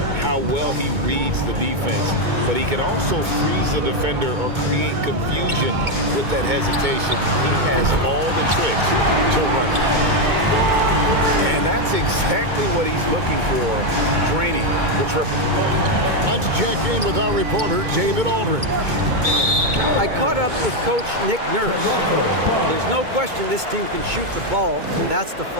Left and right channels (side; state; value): left; late; 2.2 ms